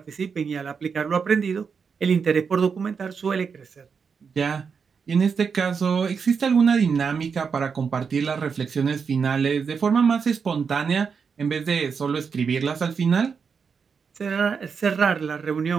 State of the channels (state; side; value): quieter; left; 5.9 dB